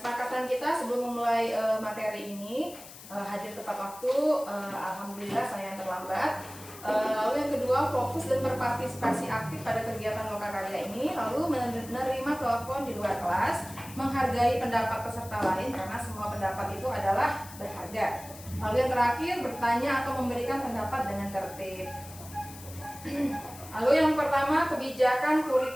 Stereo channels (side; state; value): left; noise; hiss, 16 dB below the sound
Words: kita sebelum memulai materi ini hadir tepat waktu. Alhamdulillah saya yang terlambat. Lalu yang kedua, fokus dan berpartisipasi aktif pada kegiatan lokakarya ini. Lalu menerima telepon di luar kelas, menghargai pendapat peserta lain karena semua pendapat itu adalah berharga. Lalu yang terakhir, bertanya atau memberikan pendapat dengan tertib. Lalu yang pertama, kebijakan